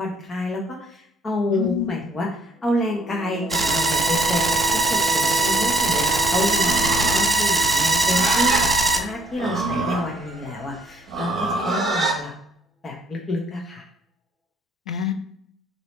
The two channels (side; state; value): both; normal; correlation 0.62